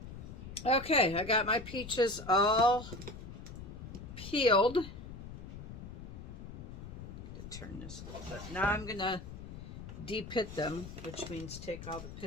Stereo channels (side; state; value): left; noise; rumble, 11 dB below the sound